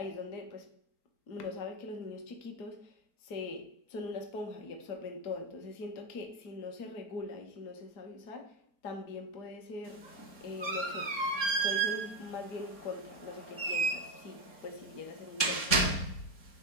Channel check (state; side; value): late; right; 4.4 ms